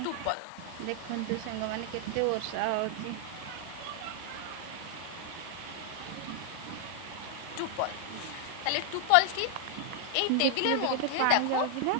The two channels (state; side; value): different; both; correlation 0.00